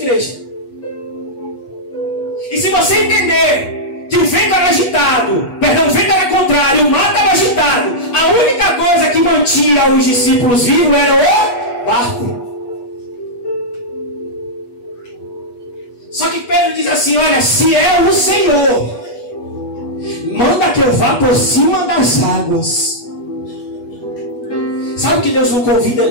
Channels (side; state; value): right; late; 8.3 ms